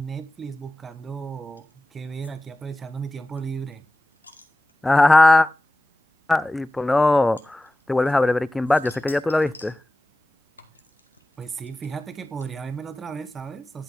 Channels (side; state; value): both; normal; correlation 0.96